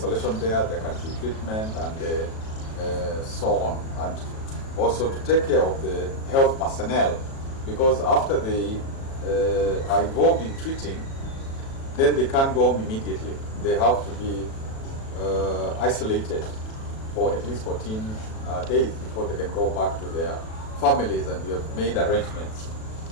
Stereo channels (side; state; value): right; late; 37 ms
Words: there, there can be treatment, and so on. And also to take care of the health personnel, because after they are involved in treating, then they can't go home immediately. They have to be isolated for at least 14 days before they can go back to their families, and we have made arrangements